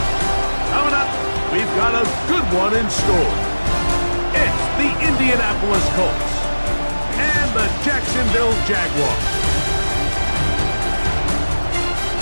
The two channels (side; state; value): both; inverted; correlation -1.00